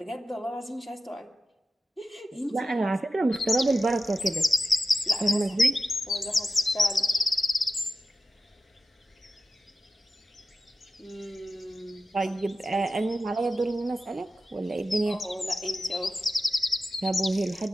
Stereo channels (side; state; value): both; normal; correlation 0.92